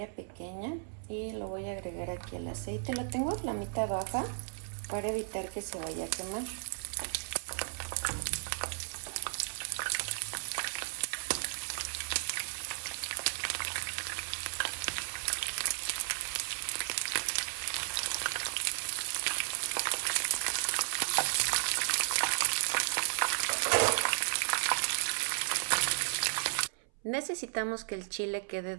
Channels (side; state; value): left; silent; 55 dB below the other